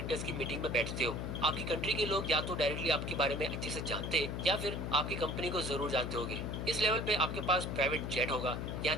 की मीटिंग में बैठते हो। आपकी कंट्री के लोग या तो डायरेक्टली आपके बारे में अच्छे से जानते हैं या फिर आपकी कंपनी को जरूर जानते होंगे। इस लेवल पे आपके पास प्राइवेट जेट होगा, यहाँ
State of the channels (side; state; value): left; noise; hum, 3 dB below the sound